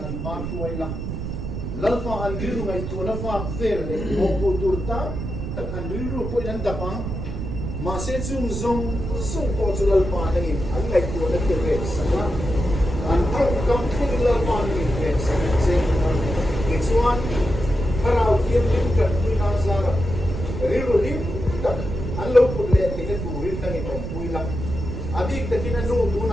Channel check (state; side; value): noise; right; rumble, 5 dB below the sound